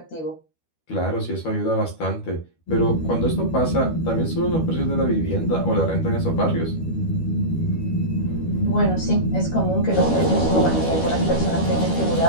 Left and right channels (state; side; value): late; right; 12 ms